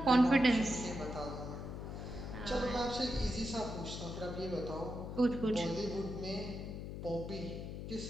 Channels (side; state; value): left; noise; hum, 7 dB below the sound